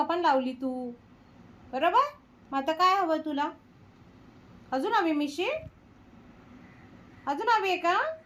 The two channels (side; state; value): both; identical; correlation 1.00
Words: पण लावली तू, बरोबर? मग आता काय हवं तुला? अजून हवी मिशी? अजून हवी आहे का?